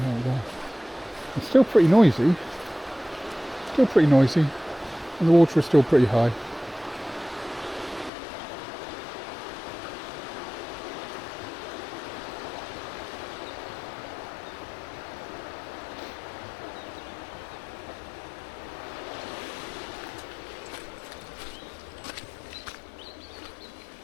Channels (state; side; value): drops out; right; at 8.1 s